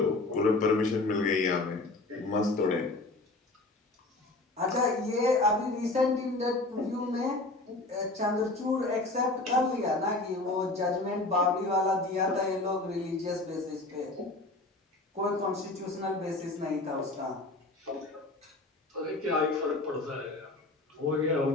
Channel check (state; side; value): quieter; right; 3.0 dB